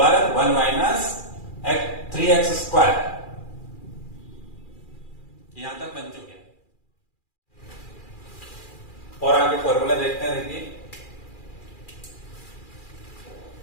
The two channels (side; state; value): right; late; 2.4 ms